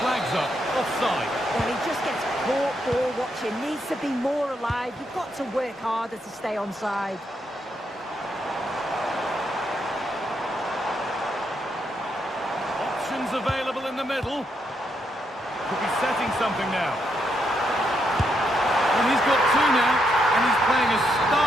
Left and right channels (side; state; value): both; normal; correlation 0.79